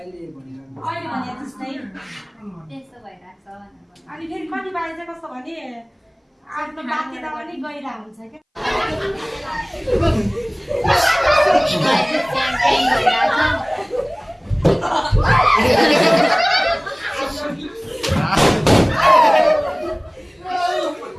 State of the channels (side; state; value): both; identical; correlation 1.00